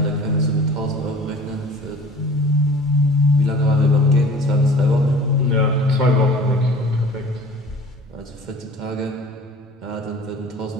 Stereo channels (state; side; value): normal; both; correlation 0.45